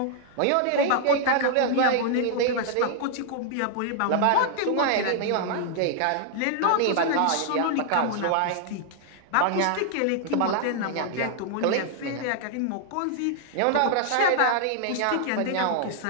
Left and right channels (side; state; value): both; different; correlation -0.01